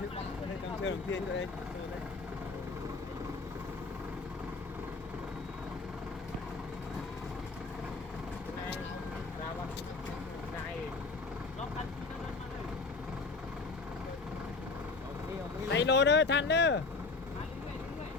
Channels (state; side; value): quieter; right; 4.0 dB